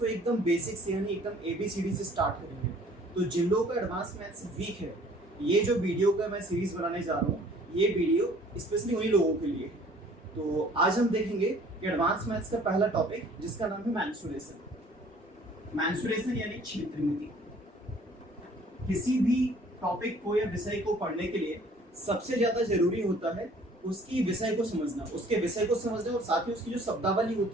एकदम बेसिक से यानी एकदम ABCD से स्टार्ट करेंगे। तो जिन लोगों का एडवांस मैथ्स वीक है, ये जो वीडियो का मैं सीरीज़ बनाने जा रहा हूँ, ये वीडियो स्पेशली उन्हीं लोगों के लिए है। तो आज हम देखेंगे कि एडवांस मैथ्स का पहला टॉपिक, जिसका नाम है मेंसुरेशन। मेंसुरेशन यानी क्षेत्रमिति। किसी भी टॉपिक को या विषय को पढ़ने के लिए सबसे ज्यादा जरूरी होता है उसकी विषय को समझना, उसके विषय को समझना और साथ ही उसकी जो शब्दावली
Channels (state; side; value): normal; both; correlation 0.54